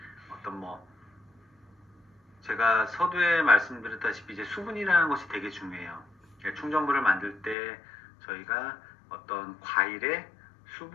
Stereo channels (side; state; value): right; drops out; at 7.6 s